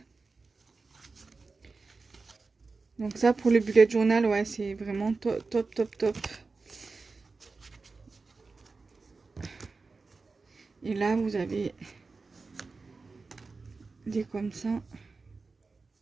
Donc ça, pour le bullet journal, ouais, c'est vraiment top, top, top, top. Et là, vous avez des comme ça.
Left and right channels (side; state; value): left; quieter; 4.1 dB